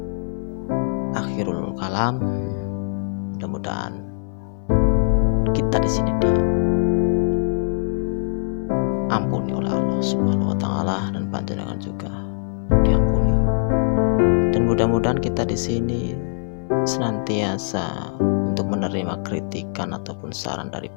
Akhirul kalam, mudah-mudahan kita di sini diampuni oleh Allah Subhanahu wa taala, dan panjenengan juga diampuni. Dan mudah-mudahan kita di sini senantiasa untuk menerima kritikan ataupun saran dari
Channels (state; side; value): silent; right; 64 dB below the other